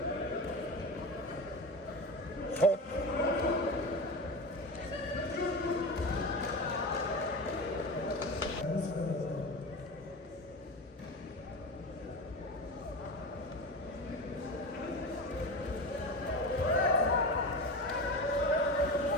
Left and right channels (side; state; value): both; normal; correlation 0.26